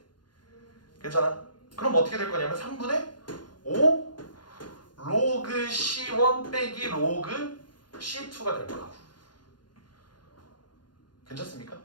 괜찮아? 그럼 어떻게 될 거냐면 3분의 5 로그 C1 빼기 로그 C2가 될 거라고. 괜찮습니까?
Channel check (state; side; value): late; right; 0.71 ms